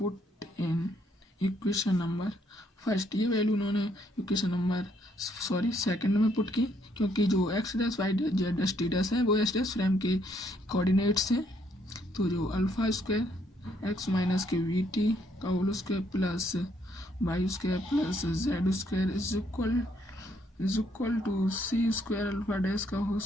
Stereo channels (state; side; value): normal; both; correlation 0.70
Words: in equation number first, ये वैल्यू उन्होंने इक्वेशन नंबर सेकंड में पुट की, क्योंकि जो x dash Y Z dash T dash है वो एस डैश फ्रेम के कोऑर्डिनेट्स हैं। तो जो अल्फ़ा स्क्वायर एक्स माइनस के वी टी का whole square plus Y square plus Z square is equal to C square alpha dash का whole